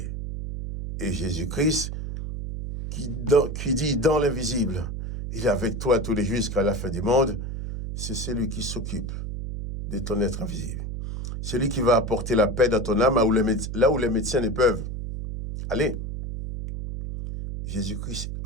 Et Jésus-Christ, qui dit dans l'invisible, il est avec toi tous les jours jusqu'à la fin du monde, c'est celui qui s'occupe de ton être invisible. Celui qui va apporter la paix dans ton âme là où les médecins ne peuvent. Allez, Jésus-Christ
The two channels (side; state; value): right; noise; hum, 5 dB below the sound